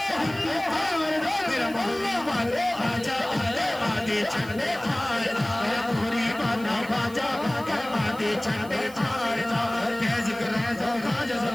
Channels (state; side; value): noise; right; hiss, 19 dB below the sound